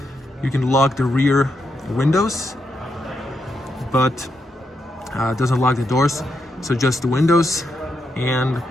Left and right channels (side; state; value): both; normal; correlation 0.82